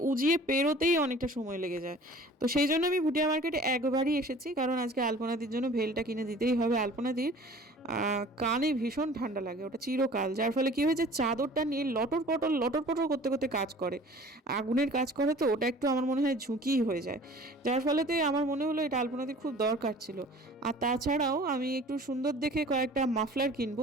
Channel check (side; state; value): both; normal; correlation 0.46